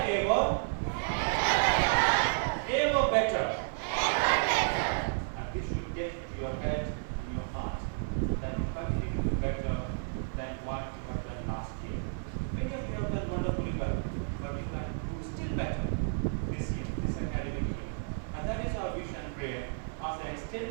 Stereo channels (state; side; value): silent; left; digital silence